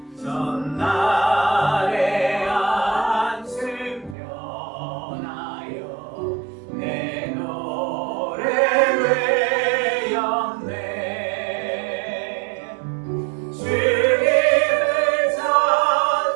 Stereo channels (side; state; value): left; drops out; at 4.2 s